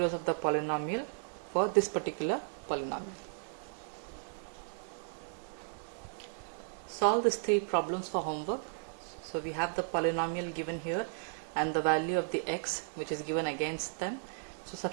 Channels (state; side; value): silent; left; digital silence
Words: of the polynomial for this particular polynomial. Solve these three problems for homework. So we have the polynomial given here and the value of the x which is given against them. So